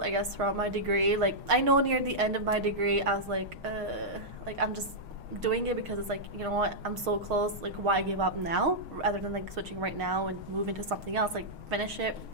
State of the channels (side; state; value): left; late; 6.4 ms